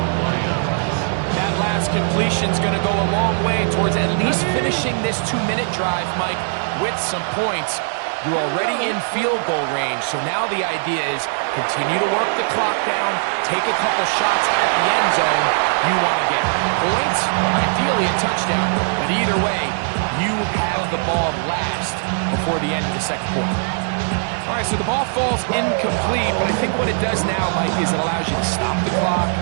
That last completion's going to go a long way towards at least finishing this 2-minute drive, Mike, with some points. You're already in field goal range, so now the idea is continue to work the clock down, take a couple shots at the end zone. You want to get points, or ideally a touchdown, but either way, you have the ball last before the end of the second quarter. All right, so the ball falls incomplete, but I think what it does now, Mike, is it allows you to stop the clock,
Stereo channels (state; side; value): silent; left; digital silence